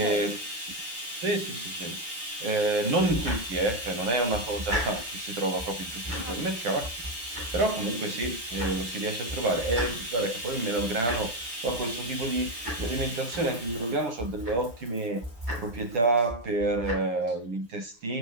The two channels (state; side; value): late; left; 8.5 ms